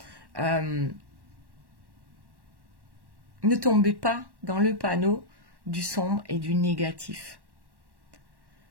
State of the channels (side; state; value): left; late; 1.1 ms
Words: ne tombez pas dans le panneau du sombre et du négatif.